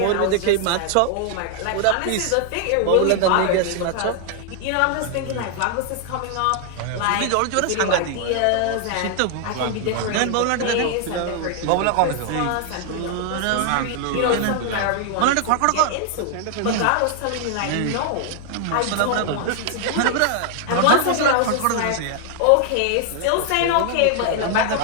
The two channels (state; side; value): different; both; correlation 0.00